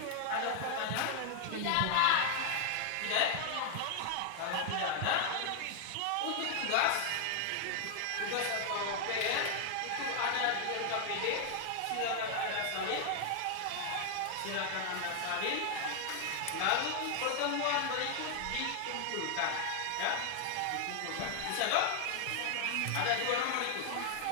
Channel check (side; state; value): both; different; correlation 0.00